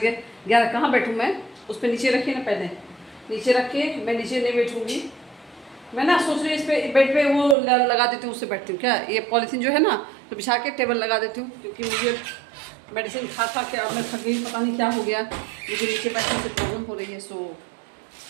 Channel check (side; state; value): left; drops out; at 7.6 s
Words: 11। कहाँ बैठूँ मैं? उस पर नीचे रखिए ना, पहले नीचे रख के मैं नीचे नहीं बैठूँगी। मैं ना सोच रही हूँ इस पर बेड पे वो लगा देती हूँ, उससे बैठती हूँ। क्या ये पॉलीथीन जो है ना, तो बिछा के टेबल लगा देती हूँ, क्योंकि मुझे मेडिसिन खा खा के अब मैं थक गई, पता नहीं क्या हो गया, मुझे नीचे बैठने से प्रॉब्लम हो रही है। सो